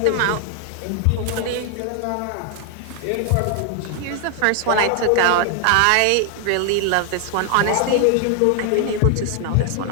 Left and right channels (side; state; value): both; different; correlation 0.00